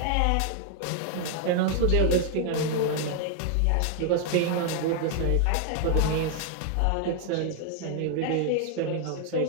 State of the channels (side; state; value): both; different; correlation 0.00